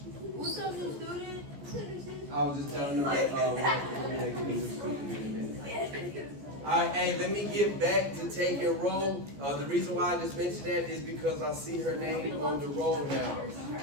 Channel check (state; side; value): late; left; 14 ms